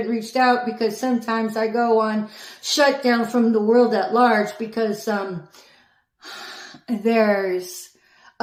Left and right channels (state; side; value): identical; both; correlation 1.00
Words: reached out because sometimes I go on shutdown from the world at large, because there's